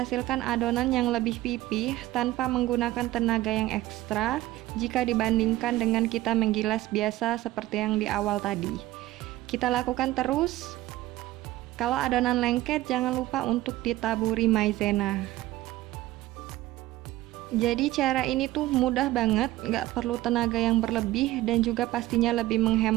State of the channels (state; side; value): quieter; left; 16.5 dB